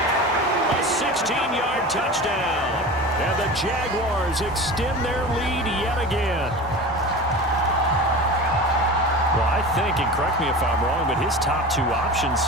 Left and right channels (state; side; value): normal; both; correlation 0.32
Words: A 16-yard touchdown. And the Jaguars extend their lead yet again. Well, I think, and correct me if I'm wrong, but his top 2 options